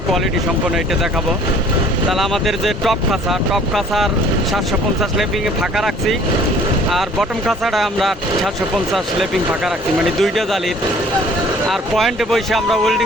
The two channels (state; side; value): normal; both; correlation 0.54